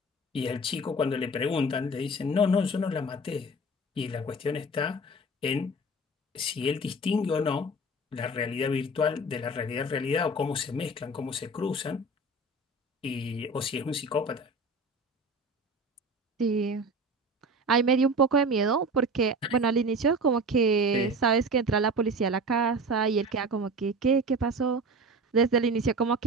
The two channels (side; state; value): both; normal; correlation 0.34